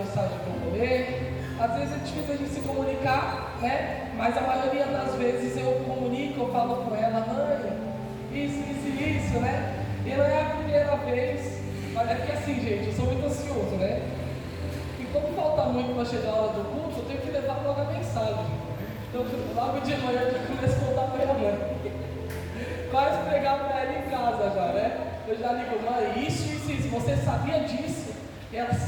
que eu vou ler. Às vezes é difícil a gente se comunicar, né? Mas a maioria das vezes eu comunico, eu falo com ela, mãe, isso, né? E não é a primeira vez, mas é que assim, gente, eu sou muito ansioso, né? E como falta muito para chegar a hora do culto, eu tenho que levar logo a mensagem. Então, logo de manhã eu já começo a contar para minha mãe. Quase pregar para ela em casa já, né? Eu já ligo, mãe, isso, você sabia disso? E ela,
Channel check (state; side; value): identical; both; correlation 1.00